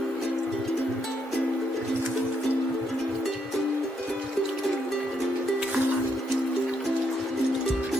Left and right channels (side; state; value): both; normal; correlation 0.76